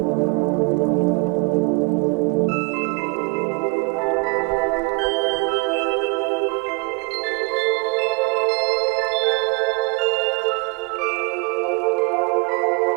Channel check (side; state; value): left; quieter; 30.7 dB